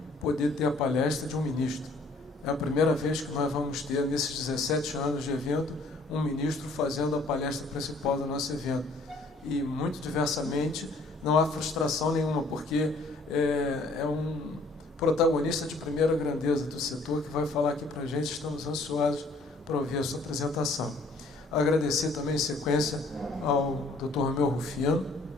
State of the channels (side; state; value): right; quieter; 3.0 dB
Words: poder ter a palestra de um ministro. É a primeira vez que nós vamos ter, nesses 17 anos de evento, um ministro fazendo a palestra principal do nosso evento. E, muito diversamente, não há frustração nenhuma, porque é um protagonista de primeira grandeza do setor que vai falar aqui para a gente. Estamos ansiosos para ouvir a sua apresentação. Agradecer também em sequência ao Dr. Romeu Rufino,